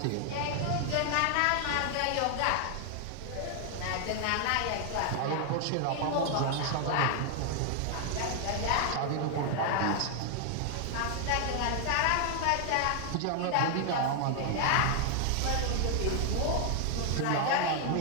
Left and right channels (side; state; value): both; different; correlation 0.00